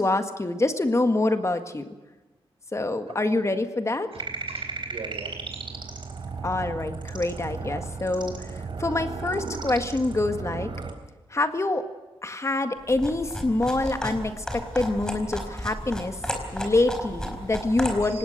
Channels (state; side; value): normal; both; correlation 0.80